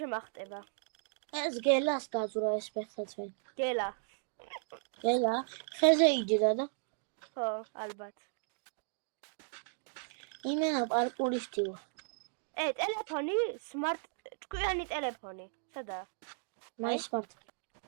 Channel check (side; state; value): left; silent; digital silence